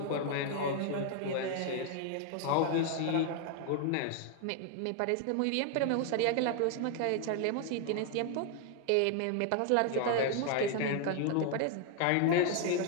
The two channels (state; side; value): different; both; correlation 0.00